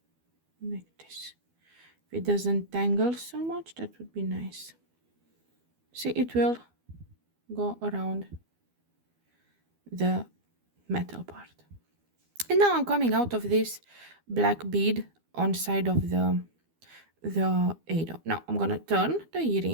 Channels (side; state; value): left; late; 12 ms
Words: like this. If it doesn't tangle so much, that would be nice. See, it will go around the metal part. And now I'm coming out of this black bead on side of the ado. Now I'm gonna turn the